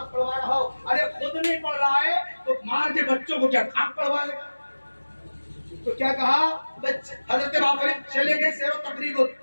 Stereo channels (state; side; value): inverted; both; correlation -1.00